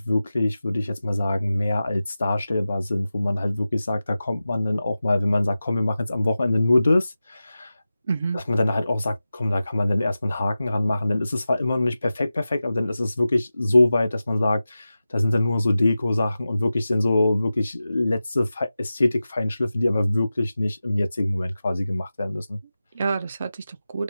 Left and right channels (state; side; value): inverted; both; correlation -0.94